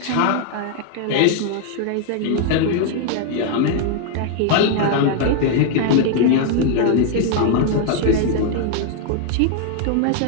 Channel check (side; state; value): both; different; correlation 0.00